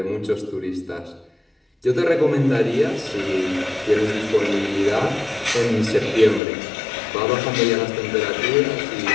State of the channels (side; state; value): right; drops out; at 6.4 s